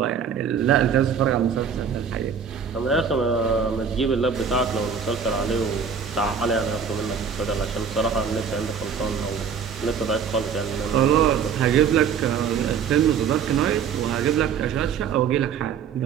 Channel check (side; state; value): left; quieter; 6.8 dB